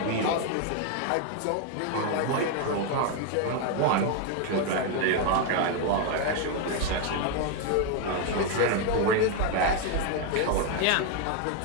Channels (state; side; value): different; both; correlation 0.01